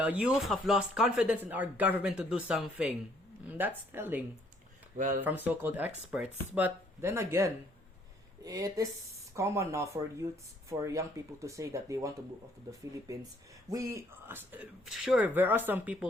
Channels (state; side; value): normal; both; correlation 0.64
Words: youth have lost confidence in our government to do something. That's telling Well, from so-called experts. But then again, it is common now for young people to say that they want to move out to the Philippines. Sure, there are some